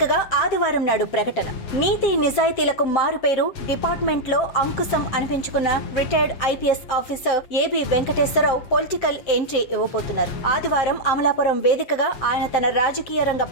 ఆదివారం నాడు ప్రకటన. నీతి నిజాయితీలకు మారుపేరు డిపార్ట్మెంట్లో అంకుశం అనిపించుకున్న retired IPS officer AB Venkateswararao political entry ఇవ్వబోతున్నారు. ఆదివారం అమలాపురం వేదికగా ఆయన తన రాజకీయ రంగ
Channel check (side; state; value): right; late; 7.7 ms